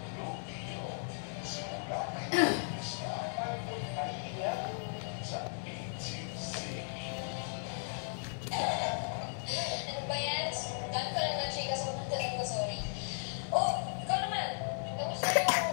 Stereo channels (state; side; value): silent; right; 54 dB below the other